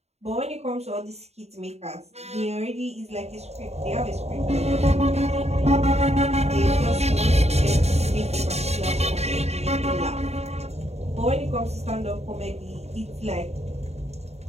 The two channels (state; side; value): late; left; 0.31 ms